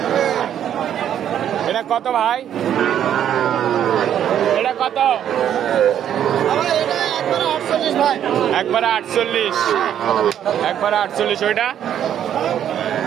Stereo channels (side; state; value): left; quieter; 10.0 dB